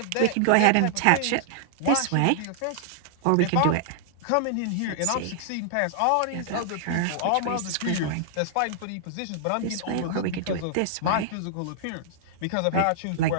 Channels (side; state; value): both; different; correlation -0.01